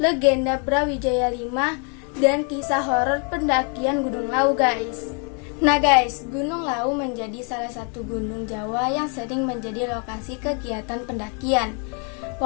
Brawijaya 5, dan kisah horor pendakian Gunung Lawu, guys. Nah guys, Gunung Lawu menjadi salah satu gunung Jawa yang sering menjadi lokasi kegiatan pendakian.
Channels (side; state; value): right; quieter; 38.3 dB